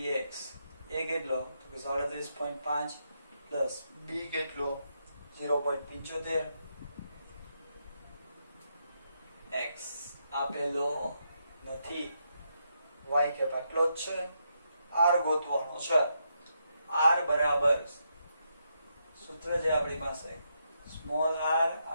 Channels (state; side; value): inverted; both; correlation -0.80